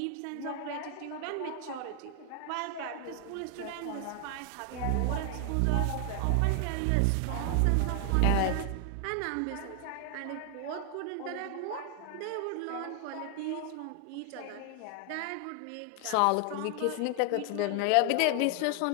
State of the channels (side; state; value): both; different; correlation 0.00